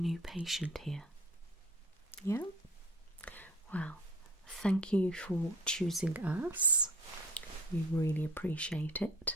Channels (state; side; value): normal; both; correlation 0.48